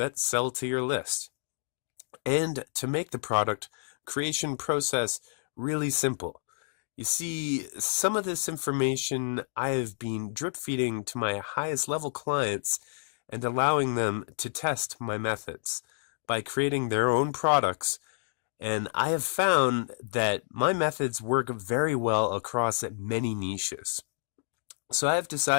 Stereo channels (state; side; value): silent; right; digital silence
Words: sell to your list, and to make the product creation process really simple. You see, some of this information I have been drip feeding to my highest level clients and allowing them to test my methods by creating their own products. And I have found that my methods work very well across many niches. So I have